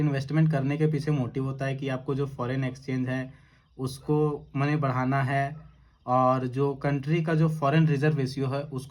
करने के पीछे मोटिव होता है कि आपको जो फॉरेन एक्सचेंज है उसको मनी बढ़ाना है, और जो कंट्री का जो फॉरेन रिजर्व रेशियो है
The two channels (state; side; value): identical; both; correlation 1.00